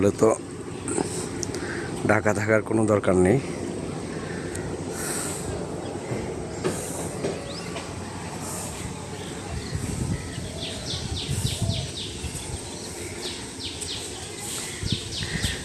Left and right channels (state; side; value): identical; both; correlation 1.00